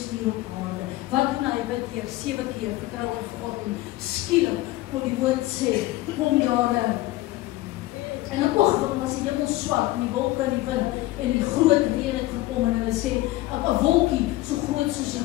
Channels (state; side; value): quieter; right; 17.7 dB